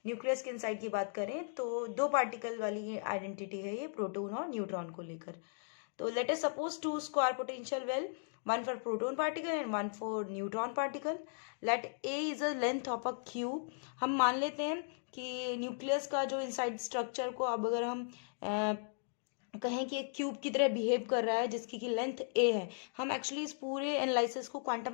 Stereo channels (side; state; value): right; silent; digital silence